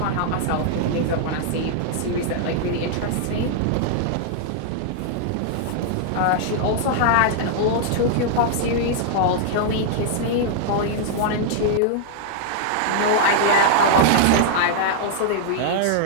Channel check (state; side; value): different; both; correlation -0.01